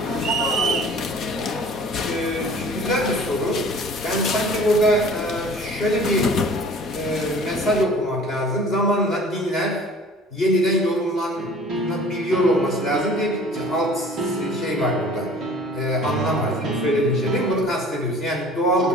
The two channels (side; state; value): both; normal; correlation 0.48